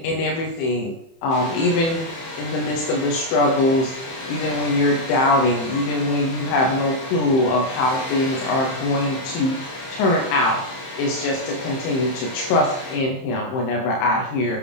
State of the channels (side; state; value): right; late; 30 ms